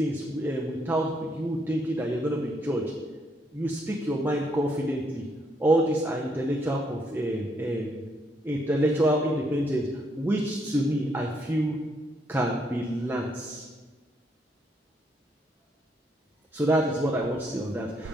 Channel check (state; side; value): normal; both; correlation 0.74